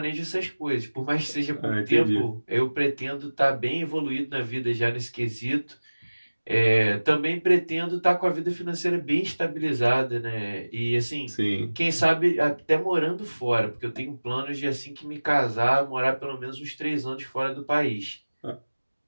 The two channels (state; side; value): inverted; both; correlation -1.00